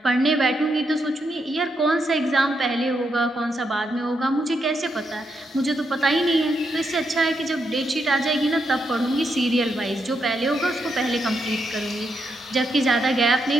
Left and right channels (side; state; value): both; normal; correlation 0.81